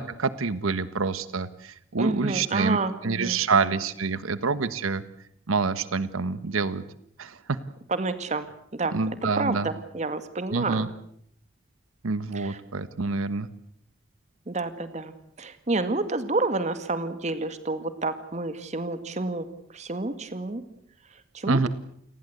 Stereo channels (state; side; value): quieter; left; 3.4 dB